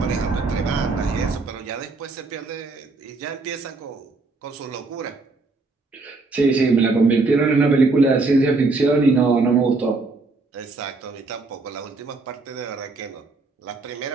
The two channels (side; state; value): left; quieter; 3.6 dB